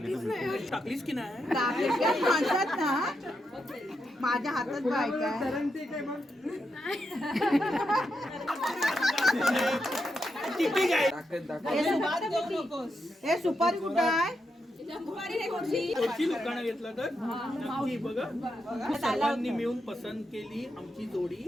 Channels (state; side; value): normal; both; correlation 0.84